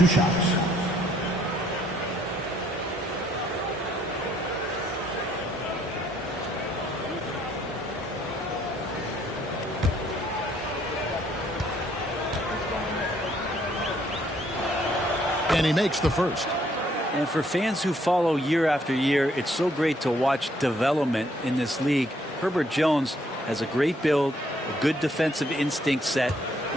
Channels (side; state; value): both; normal; correlation 0.67